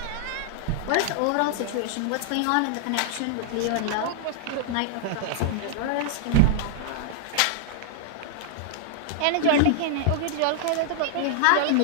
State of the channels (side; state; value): both; different; correlation -0.01